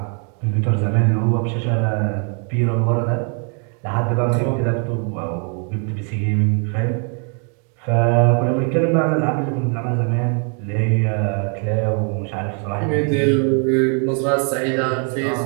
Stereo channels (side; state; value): left; quieter; 40.0 dB